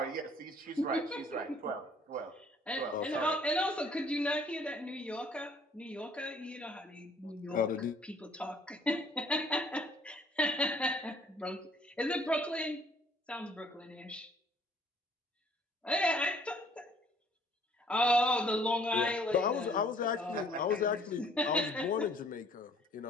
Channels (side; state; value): both; normal; correlation 0.59